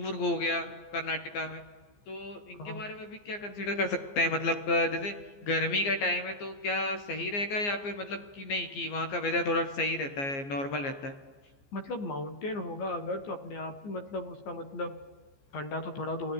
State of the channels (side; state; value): right; late; 15 ms